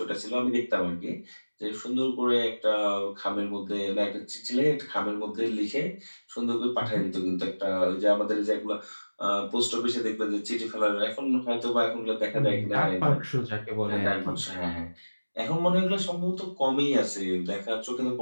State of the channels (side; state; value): both; inverted; correlation -1.00